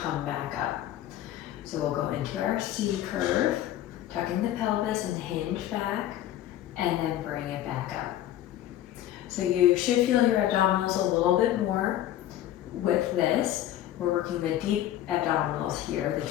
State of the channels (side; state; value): right; quieter; 12.6 dB